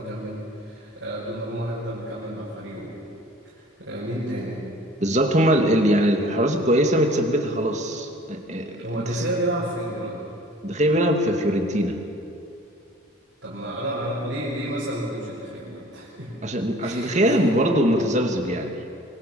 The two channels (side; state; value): both; normal; correlation 0.49